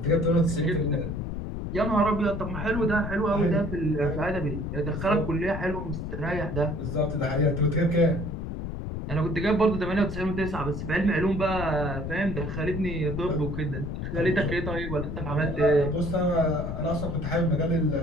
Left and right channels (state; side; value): noise; left; rumble, 5 dB below the sound